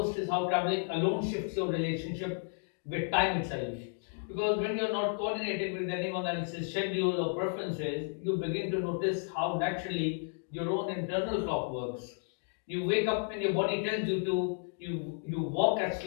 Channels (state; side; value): silent; right; 56 dB below the other